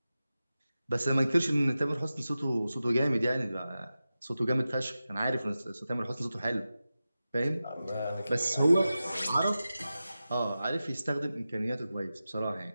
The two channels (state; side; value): inverted; both; correlation -0.94